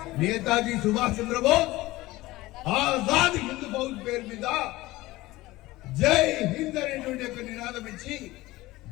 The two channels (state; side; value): quieter; right; 18.8 dB